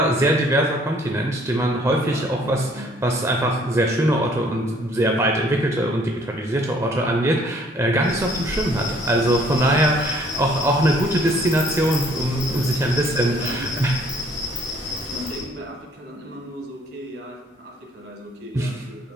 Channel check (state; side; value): normal; both; correlation 0.60